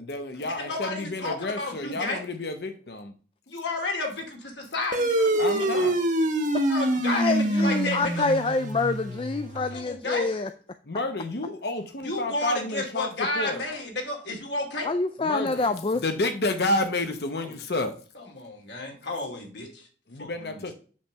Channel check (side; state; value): both; normal; correlation 0.22